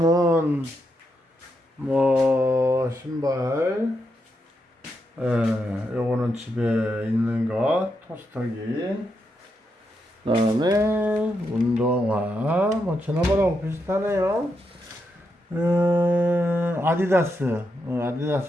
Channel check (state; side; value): normal; both; correlation 0.83